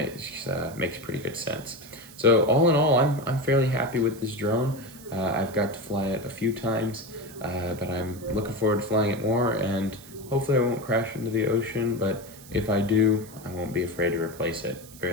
pretty good sense. So all in all, I'm fairly happy with this drone. I've got to fly it a few times, but I'm looking forward to flying it more, and hopefully I won't crash into the ocean, but if I do, I won't be afraid to replace it.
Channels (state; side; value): noise; right; hiss, 19 dB below the sound